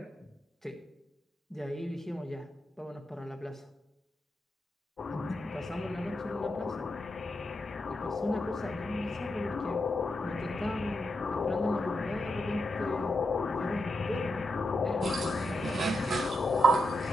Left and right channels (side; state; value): both; normal; correlation 0.85